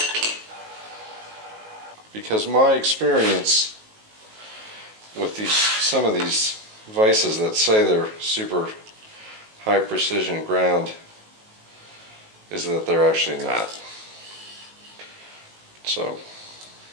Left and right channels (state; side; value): late; left; 19 ms